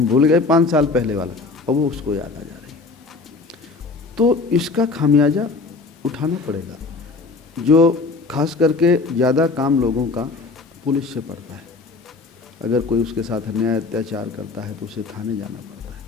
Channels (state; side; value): quieter; right; 4.0 dB